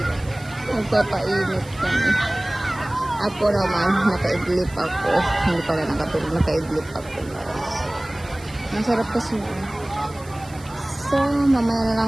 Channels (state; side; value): noise; right; hiss, 21 dB below the sound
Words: Magpapainit kami. Ako naman, nakaidlip ako. Hindi pala nakatulog, nakaidlip ako guys. Masarap kasi. So, mamaya na